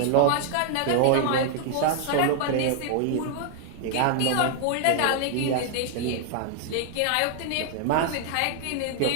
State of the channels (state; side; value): different; both; correlation 0.00